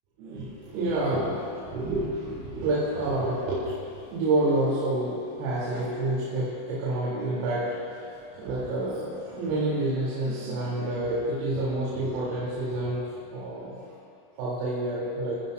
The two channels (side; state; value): left; late; 32 ms